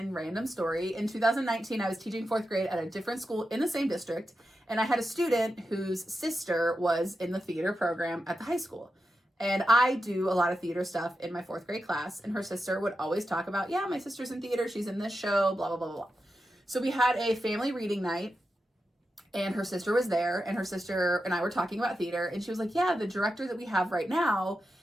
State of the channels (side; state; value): both; normal; correlation 0.89